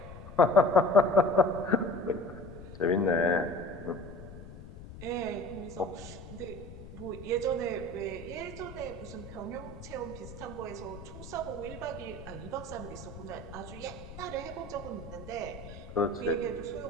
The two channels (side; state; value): left; noise; rumble, 14 dB below the sound